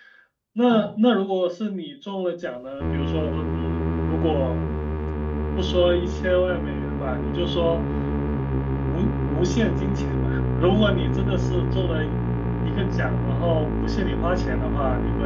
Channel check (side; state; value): both; identical; correlation 1.00